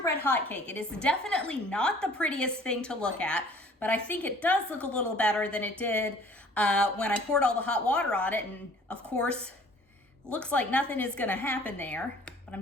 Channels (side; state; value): both; normal; correlation 0.52